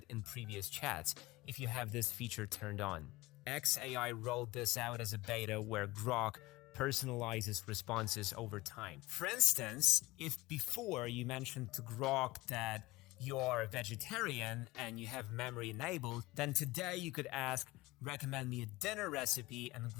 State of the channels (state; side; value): quieter; right; 19.8 dB